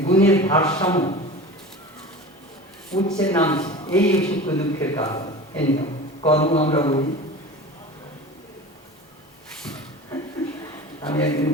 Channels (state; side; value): normal; both; correlation 0.34